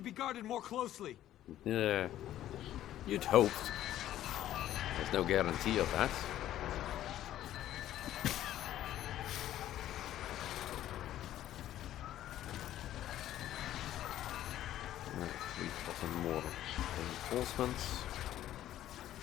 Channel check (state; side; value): quieter; right; 12.8 dB